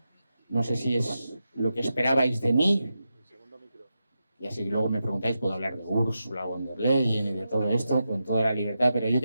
No sé si es lo que esperabais de mí. Y así luego me preguntáis, puedo hablar de Ursula von der Leyen y de todo esto con toda la libertad. Pero yo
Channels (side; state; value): both; inverted; correlation -0.88